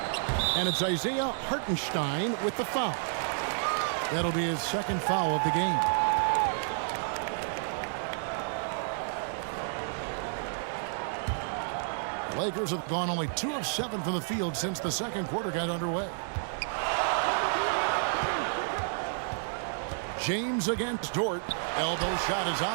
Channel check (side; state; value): left; silent; digital silence